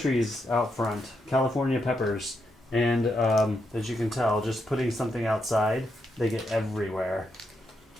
out front, California peppers, and as you can tell, just putting something outside, they get everywhere.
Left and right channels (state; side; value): normal; both; correlation 0.81